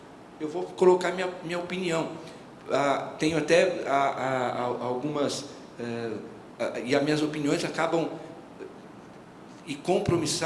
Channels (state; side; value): identical; both; correlation 1.00